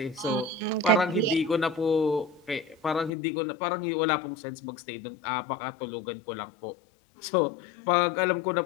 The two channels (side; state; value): right; drops out; at 3.1 s